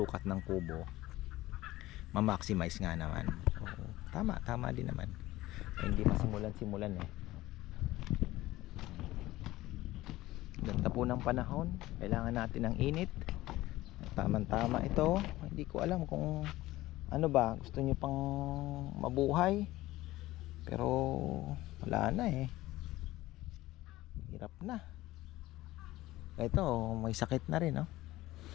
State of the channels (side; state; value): right; quieter; 17.2 dB